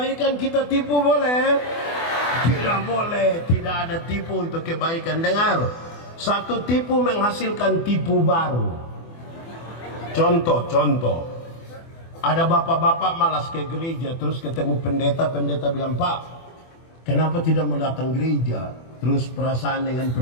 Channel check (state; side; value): late; right; 24 ms